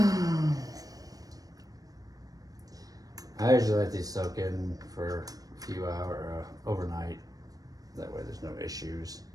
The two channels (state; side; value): late; left; 0.18 ms